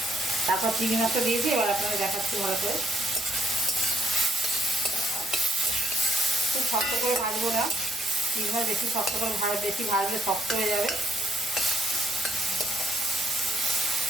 তারপর চিংড়ি মাছটা দিয়েছি। এবার আপনারা দেখাচ্ছি ভালো করে। খুব শক্ত করে ভাজবো না, চিংড়ি মাছ বেশি শক্ত করে বেশি ভাজলে শক্ত হয়ে যাবে।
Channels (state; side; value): normal; both; correlation 0.73